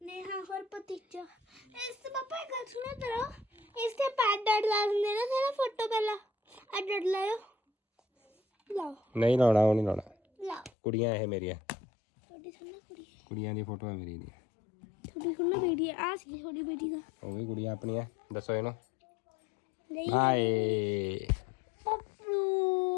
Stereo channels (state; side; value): drops out; right; at 10.7 s